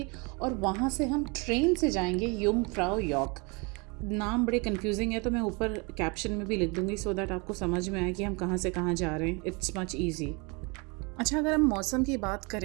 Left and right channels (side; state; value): left; quieter; 30.1 dB